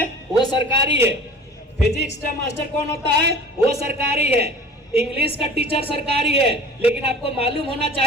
वो सरकारी है। फिजिक्स का मास्टर कौन होता है? वो सरकारी है। इंग्लिश का टीचर सरकारी है। लेकिन आपको मालूम होना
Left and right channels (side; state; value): both; normal; correlation 0.42